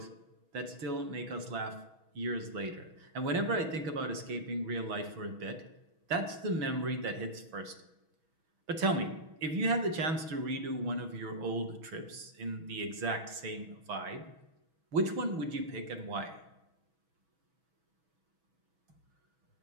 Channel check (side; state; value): left; late; 6.2 ms